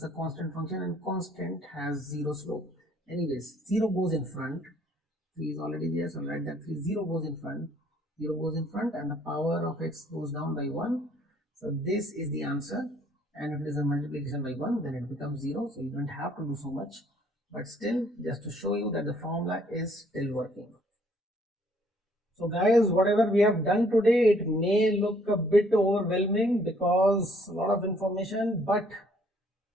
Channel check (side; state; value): both; normal; correlation 0.63